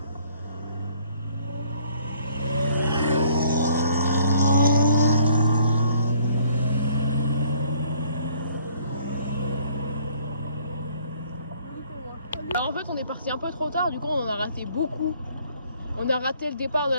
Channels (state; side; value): inverted; both; correlation -0.61